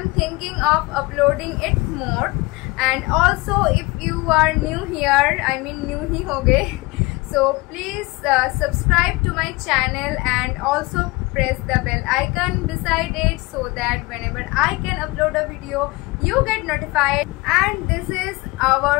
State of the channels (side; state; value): right; quieter; 23.5 dB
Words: thinking of uploading it more, and also if you are new here, I mean new ही हो गए, so please subscribe to my channel and also press the bell icon beside it so that whenever I can upload a video you get notified. And this is our